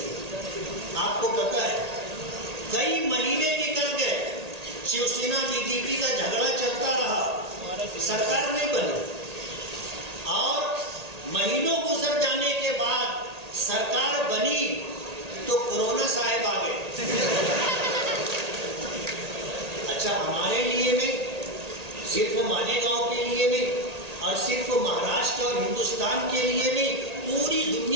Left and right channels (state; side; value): late; left; 1.8 ms